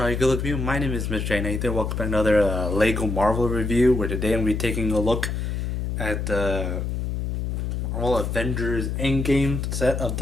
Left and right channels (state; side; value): noise; left; hum, 2 dB below the sound